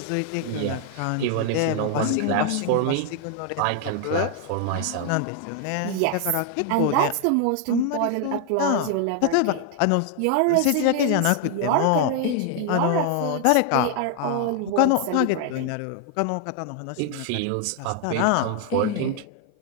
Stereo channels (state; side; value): different; both; correlation 0.00